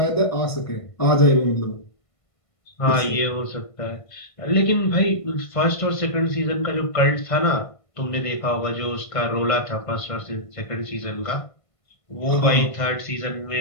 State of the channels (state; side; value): late; right; 1.5 ms